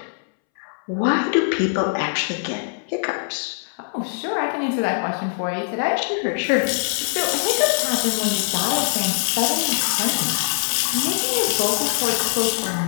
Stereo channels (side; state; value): right; silent; 64 dB below the other